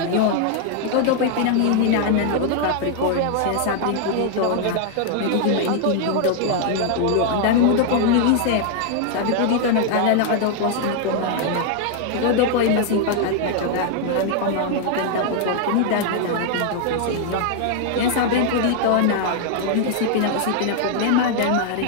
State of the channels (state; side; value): different; both; correlation 0.00